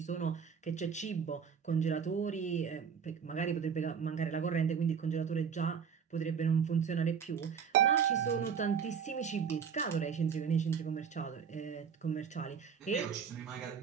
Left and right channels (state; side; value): quieter; left; 6.9 dB